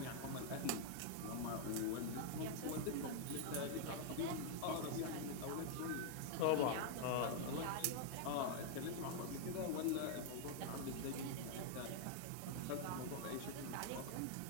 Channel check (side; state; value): both; different; correlation 0.00